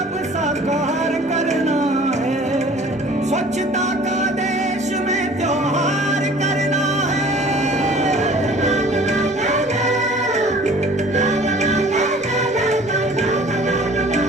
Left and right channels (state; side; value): normal; both; correlation 0.49